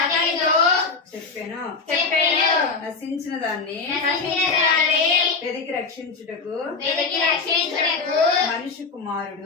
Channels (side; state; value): right; quieter; 4.5 dB